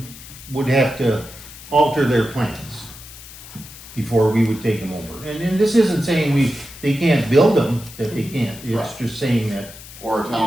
would have to alter their plans before we would take them over. And this isn't saying they can't build them, that they can't, it's Right. just saying that, Or a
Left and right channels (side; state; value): left; noise; hiss, 16 dB below the sound